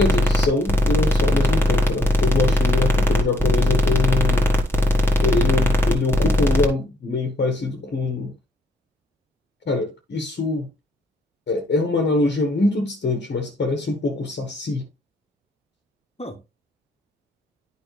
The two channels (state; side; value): normal; both; correlation 0.70